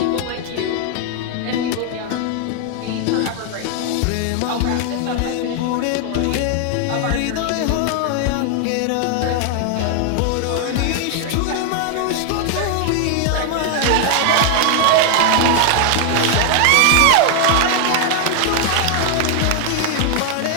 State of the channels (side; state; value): both; different; correlation 0.00